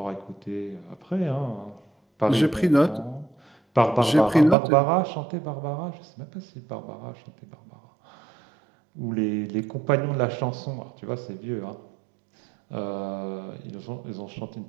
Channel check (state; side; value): drops out; left; at 4.5 s